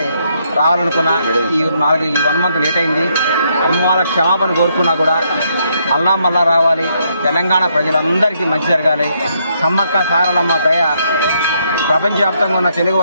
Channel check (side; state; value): both; inverted; correlation -0.74